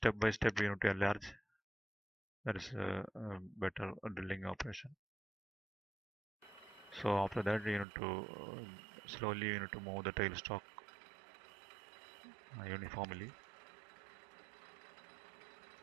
by step you need to enlarge. That is a better drilling operation. So after that you need to slowly you need to move the tailstock uniformly.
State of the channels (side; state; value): left; drops out; at 7.9 s